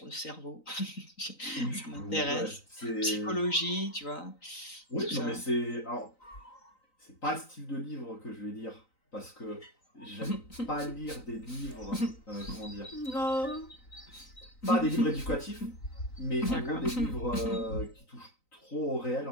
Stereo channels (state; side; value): late; right; 3.9 ms